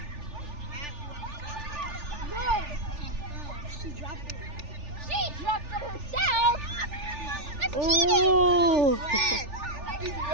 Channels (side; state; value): left; late; 3.4 ms